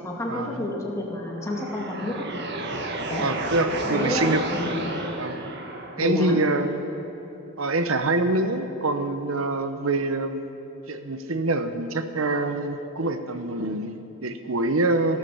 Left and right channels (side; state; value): both; normal; correlation 0.09